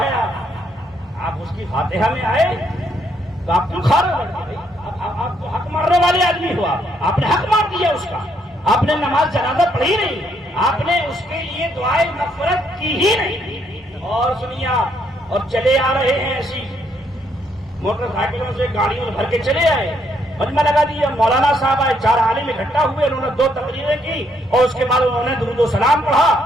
آپ اس کی فاتحہ میں آئے تو آپ کیوں کھا رہے ہیں؟ آپ تو حق مارنے والے آدمی ہوا, آپ نے حق مار دیا اس کا. آپ نے نماز جنازہ پڑھی نہیں, آپ نے اس کے لیے دعائے مغفرت کی ہی نہیں. اور سنیے آپ, اور چلے آ رہے ہیں ایسی موٹر سائیکلوں سے, گاڑیوں بھر کے چلے آئے, مجمع لگا دیا. مولانا صاحب آئے, 4 عالم اکٹھا ہوئے, انہوں نے 2 تقریریں کی اور اس کے بعد انہوں نے درود و سلام پڑھا.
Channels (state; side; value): normal; both; correlation 0.73